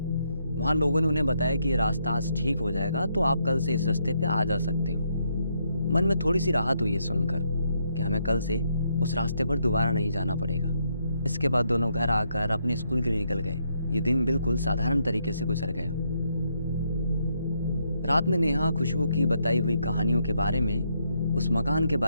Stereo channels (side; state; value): both; inverted; correlation -0.76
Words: वहाँ लोगों ने उन्हें बताया कि ये रास्ता आज ठीक हो जाएगा, तो आप कल से इस रास्ते पे आ जा सकते हो। मन में थोड़ी सी राहत हुई है सुनकर कि हमें कल से उस रास्ते पर दोबारा नहीं जाना पड़ेगा। इसके बाद दोनों घर आकर अपने स्कूल के लिए निकल गए। ये दिन बिल्कुल साधारण तरीके से गुजर गया। रात में नेहा खुशबू की बताई हुई कहानियों के बारे में, उस मकान के